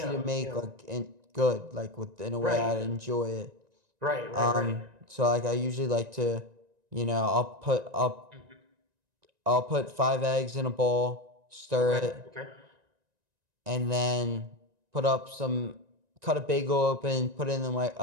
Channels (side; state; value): left; late; 1.9 ms